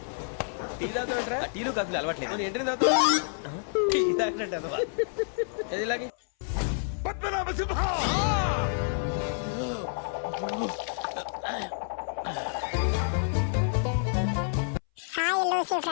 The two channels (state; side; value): silent; right; 59 dB below the other